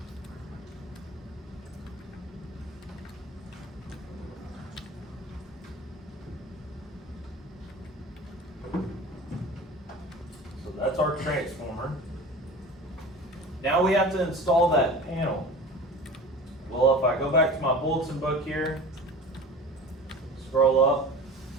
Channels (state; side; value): normal; both; correlation 0.37